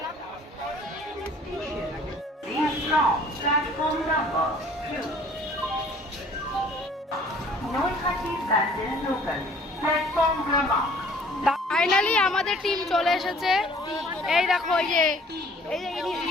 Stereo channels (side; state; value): both; normal; correlation 0.54